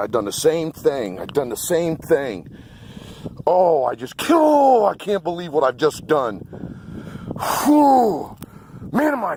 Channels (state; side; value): identical; both; correlation 1.00